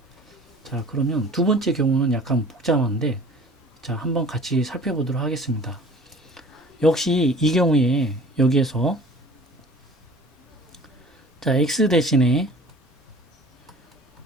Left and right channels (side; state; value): both; normal; correlation 0.46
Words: 자 그러면 두 번째 경우는 약간 복잡한데 자 한번 같이 살펴보도록 하겠습니다. 역시 이 경우에 여기에서 자 x 대신에